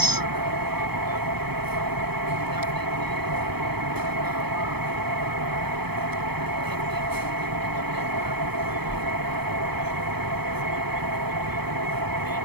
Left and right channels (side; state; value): left; late; 0.97 ms